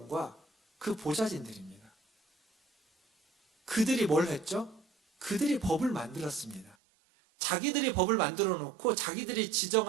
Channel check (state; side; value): drops out; left; at 6.8 s